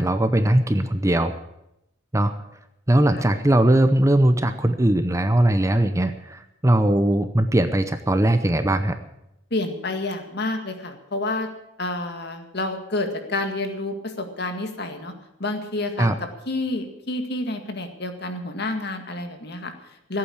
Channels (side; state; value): both; normal; correlation 0.80